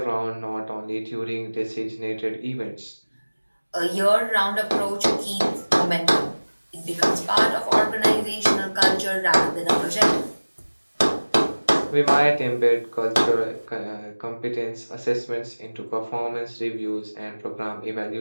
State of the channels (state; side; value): inverted; both; correlation -1.00